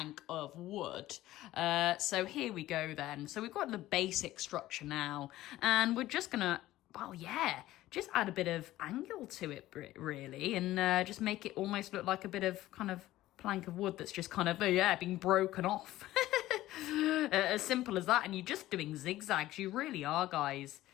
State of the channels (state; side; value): quieter; right; 15.6 dB